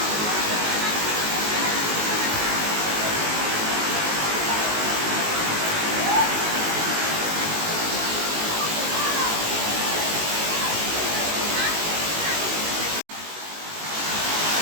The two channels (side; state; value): left; late; 19 ms